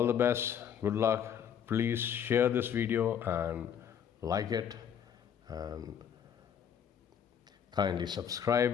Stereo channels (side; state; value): right; quieter; 8.6 dB